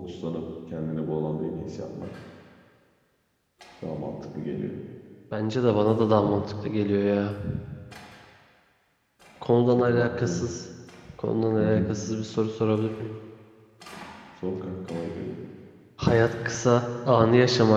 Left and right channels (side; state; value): both; identical; correlation 1.00